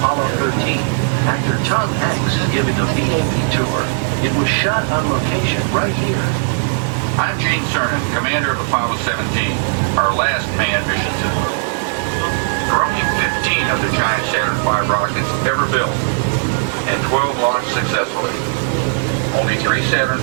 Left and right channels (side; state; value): left; silent; digital silence